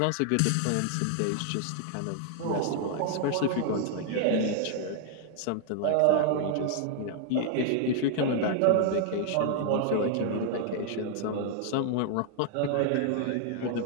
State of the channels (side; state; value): both; different; correlation 0.00